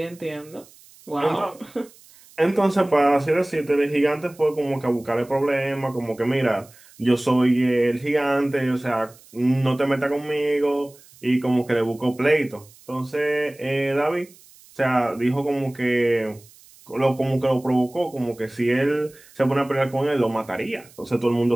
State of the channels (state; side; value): noise; right; hiss, 25 dB below the sound